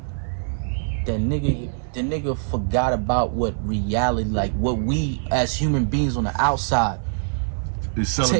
that the nigga forgot about what reality, like what we as human beings on the outside is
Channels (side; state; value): left; silent; 61 dB below the other